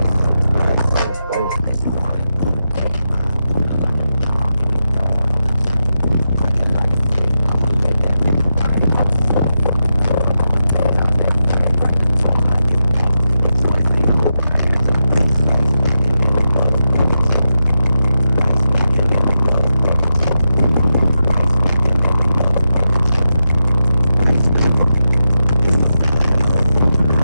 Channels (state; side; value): inverted; both; correlation -0.88